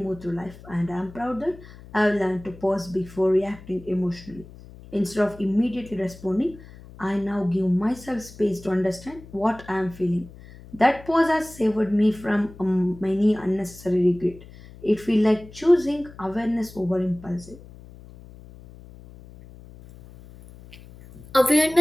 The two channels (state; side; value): noise; left; hum, 19 dB below the sound